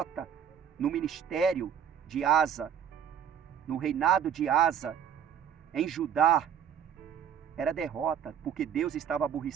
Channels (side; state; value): left; quieter; 8.5 dB